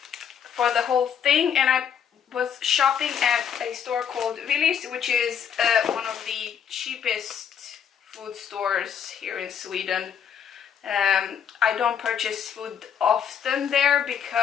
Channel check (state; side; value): quieter; right; 8.1 dB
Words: the whole thing, and I was shopping at a store called Willy, which is one of the cheapest food stores here in Sweden. I don't purchase food often there